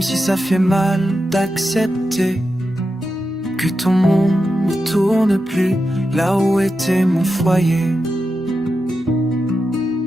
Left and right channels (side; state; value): both; normal; correlation 0.89